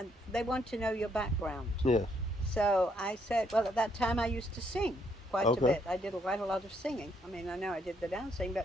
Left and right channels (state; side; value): normal; both; correlation 0.72